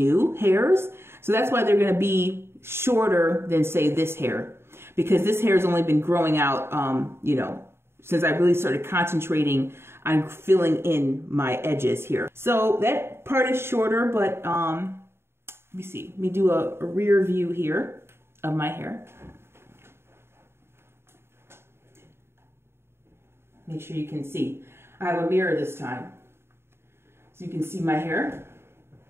hairs. So that's why they're going to be shorter than, say, this hair, because this hair has only been growing out, you know, since I really started concentrating on filling in my edges here. So that part is shorter, but let me see. Let me do a rear view here of my hair. Make sure you can see. I have a mirror this time, so you can see my hair.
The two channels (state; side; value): late; left; 0.12 ms